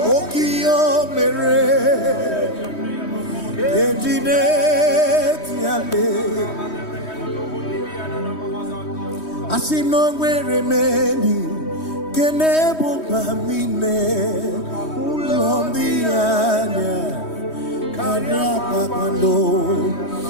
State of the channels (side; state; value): right; late; 3.2 ms